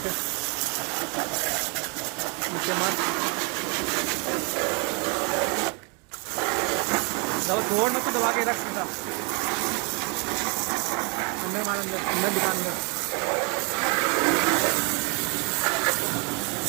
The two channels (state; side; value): quieter; left; 32.2 dB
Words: नीचे मार दबा, छोड़ मत, दबा के रख सीधा अंदर मार, अंदर अंदर दिखा, अंदर